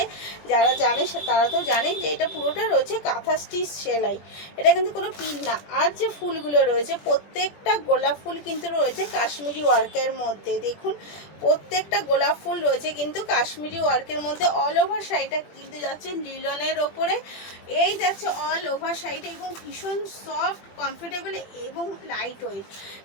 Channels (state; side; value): late; right; 20 ms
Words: যারা জানে তারা তো জানেন যে এটা পুরোটা রয়েছে কাঁথা স্টিচ সেলাই, এটা কিন্তু কোনো পিন না। আর যে ফুলগুলো রয়েছে প্রত্যেকটা গোলাপ ফুল কিন্তু রয়েছে কাশ্মীরি ওয়ার্কের মধ্যে। দেখুন প্রত্যেকটা গোলাপ ফুল রয়েছে কিন্তু কাশ্মীরি ওয়ার্কের মধ্যে। অল ওভার শাড়িটা কিন্তু যাচ্ছে লিলনের ওপরে, এই যাচ্ছে অল ওভার শাড়িটা, এবং ভীষণ সফট, কমফোর্টেবল এবং লাইট ওয়েট,